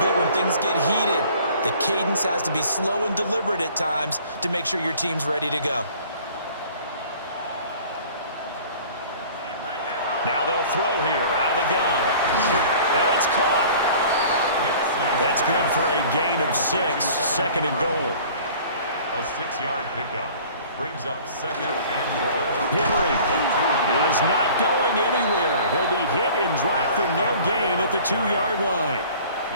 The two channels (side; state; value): both; inverted; correlation -0.48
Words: bit when things get heated. The cadence has to be slow and deliberate at times to make sure your team's ready to go. Now they'll throw here out of the gun. And it's caught. That's good for a gain of 6, 2nd and goal. A 6-yard pickup brings up 2nd and goal. Henry is not going anywhere. He'll be hit and dropped for no gain at the 2-yard line.